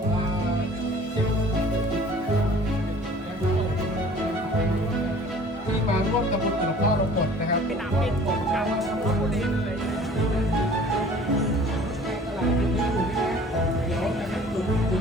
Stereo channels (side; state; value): both; normal; correlation 0.49